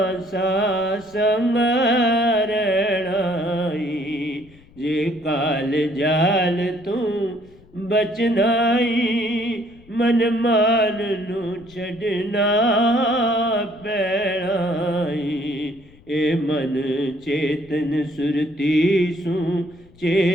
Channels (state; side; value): noise; left; rumble, 25 dB below the sound